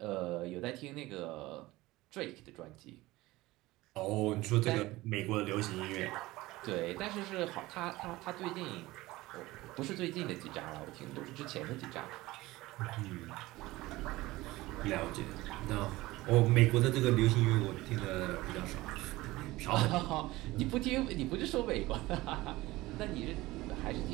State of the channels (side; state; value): left; quieter; 19.0 dB